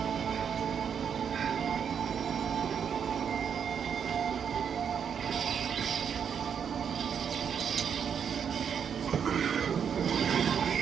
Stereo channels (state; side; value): quieter; left; 7.5 dB